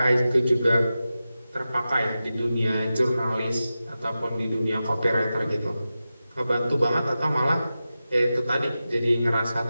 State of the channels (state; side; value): inverted; both; correlation -0.93